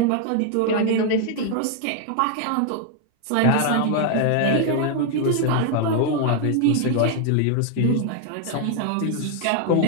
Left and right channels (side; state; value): both; different; correlation 0.00